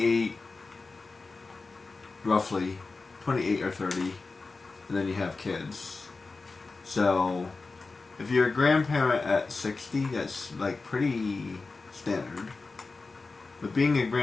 roughly, 28 or 30, and then you have kids. So if you're a grandparent at 60, that's like pretty standard. But being a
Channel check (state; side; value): quieter; right; 3.9 dB